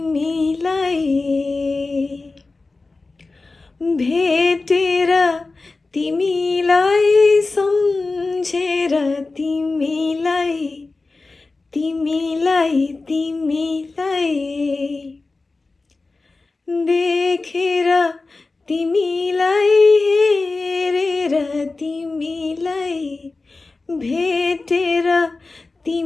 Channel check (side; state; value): right; quieter; 3.6 dB